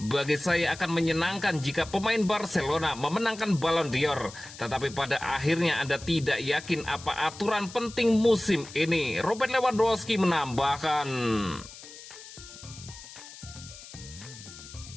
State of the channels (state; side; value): noise; left; hiss, 16 dB below the sound